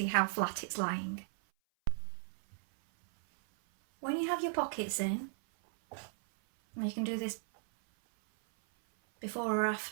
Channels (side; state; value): left; silent; 54 dB below the other